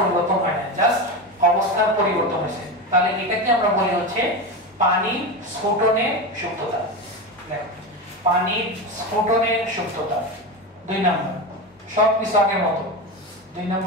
হয় না, জাস্ট অবস্থার পরিবর্তন হয়েছে। তাহলে এটাকে আমরা বলি হচ্ছে পানি স্ফুটনের সুপ্ততা। দেখো, পানি স্ফুটনের সুপ্ততা 2 নাম্বার, সব কিছু আগের মতো। 2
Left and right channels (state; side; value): normal; both; correlation 0.19